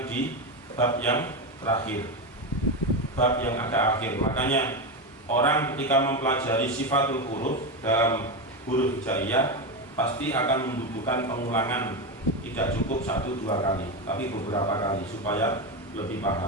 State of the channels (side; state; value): both; normal; correlation 0.14